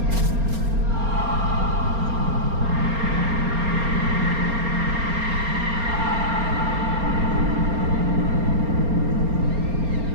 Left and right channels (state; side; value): late; left; 4.3 ms